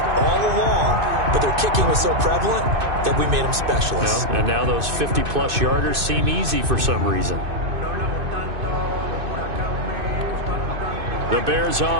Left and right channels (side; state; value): left; late; 2.6 ms